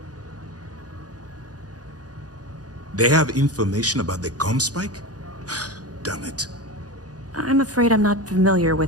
They have information about the comm spike? Damn it. I'm afraid I'm not familiar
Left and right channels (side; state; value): left; late; 0.68 ms